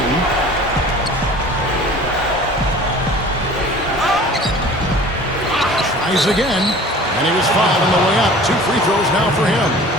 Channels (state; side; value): normal; both; correlation 0.44